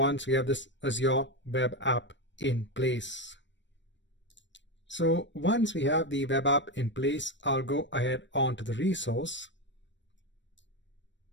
we have this Azure web app in place. So once we have the web app in place, I'll go ahead onto the resource.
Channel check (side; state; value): right; late; 0.53 ms